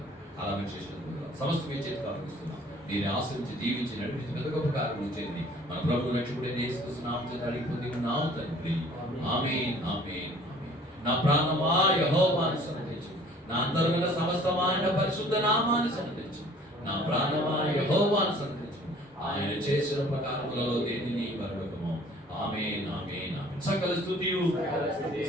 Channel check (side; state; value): both; normal; correlation 0.53